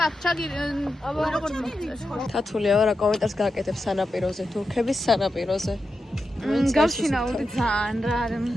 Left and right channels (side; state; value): both; normal; correlation 0.89